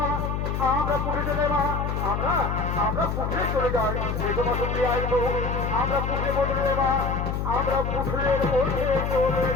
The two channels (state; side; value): noise; left; hum, 2 dB below the sound